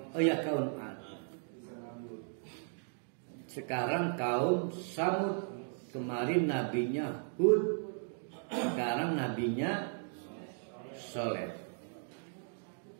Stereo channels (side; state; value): left; silent; 54 dB below the other